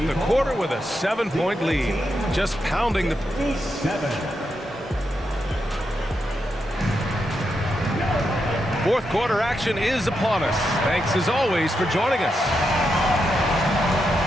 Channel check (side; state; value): both; normal; correlation 0.84